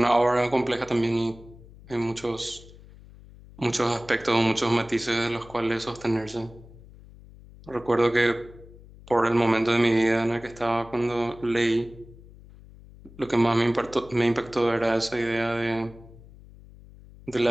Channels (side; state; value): left; noise; hum, 21 dB below the sound